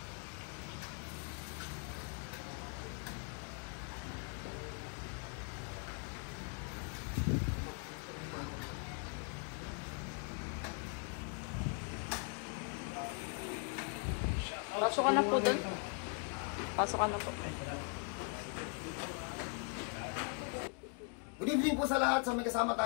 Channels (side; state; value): right; quieter; 39.1 dB